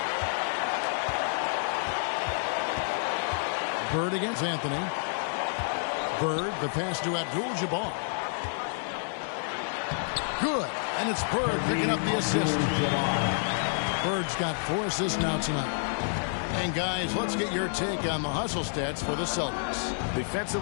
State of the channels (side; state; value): right; silent; digital silence